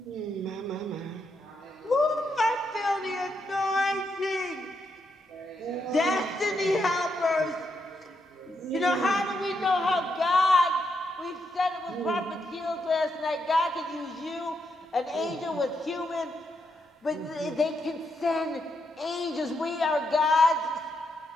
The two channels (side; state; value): both; normal; correlation 0.81